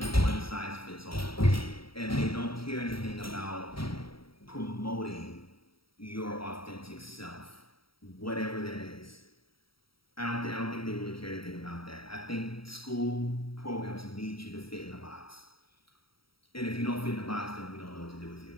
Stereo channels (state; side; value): late; right; 0.75 ms